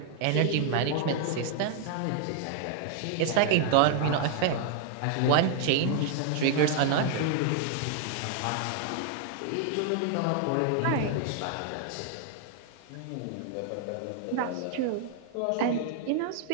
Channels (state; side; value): different; both; correlation 0.00